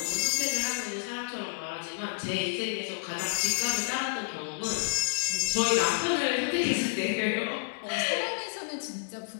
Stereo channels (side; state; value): right; silent; digital silence